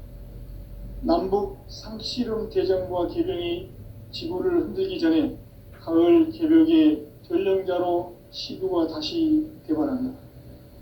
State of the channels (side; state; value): both; identical; correlation 1.00